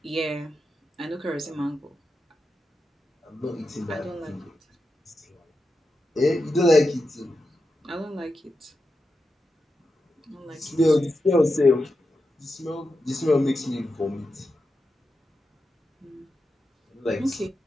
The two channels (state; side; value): normal; both; correlation 0.89